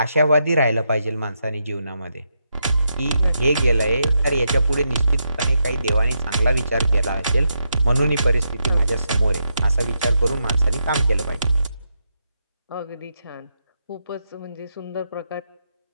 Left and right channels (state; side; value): inverted; both; correlation -0.82